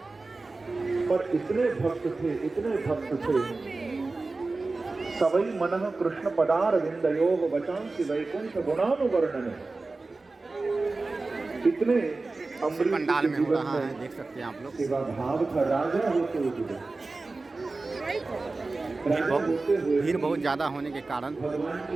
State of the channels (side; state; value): left; quieter; 3.5 dB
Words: पर इतने भक्त थे, इतने भक्त थे। सवई मनः कृष्ण पदार विंदयोः वचांसि वैकुंठ गुणानुवर्णन। इतने अम्बरीश पंडाल में हो रहा है, देख सकते हैं आप लोग। सेवा भाव था, राजा होते हुए भीड़ बहुत ज़्यादा होने के कारण